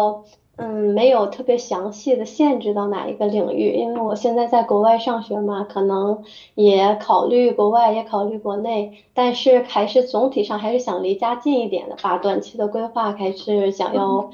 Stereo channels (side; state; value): both; identical; correlation 1.00